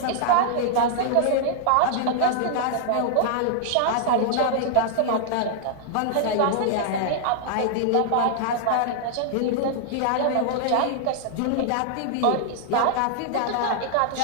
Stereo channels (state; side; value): different; both; correlation -0.01